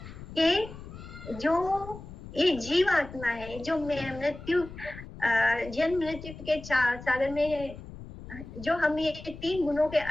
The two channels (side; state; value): left; noise; rumble, 14 dB below the sound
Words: कि जो ये जीव आत्मा है, जो मृत्यु जन्म मृत्यु के सागर में जो हम ये 3 गुणों के